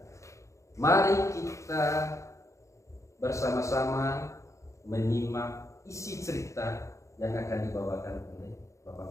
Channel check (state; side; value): late; right; 0.15 ms